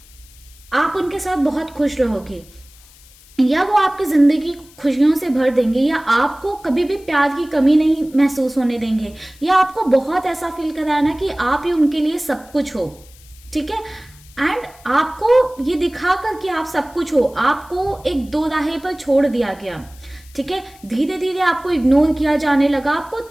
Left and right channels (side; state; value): left; noise; hiss, 25 dB below the sound